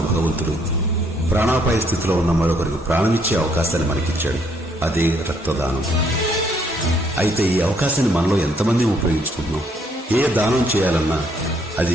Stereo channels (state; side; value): normal; both; correlation 0.68